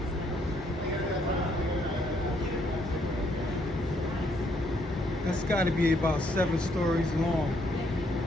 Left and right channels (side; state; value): both; normal; correlation 0.71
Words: That's got to be about 7 stories long.